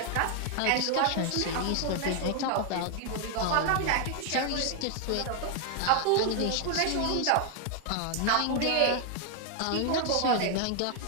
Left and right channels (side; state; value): both; different; correlation 0.00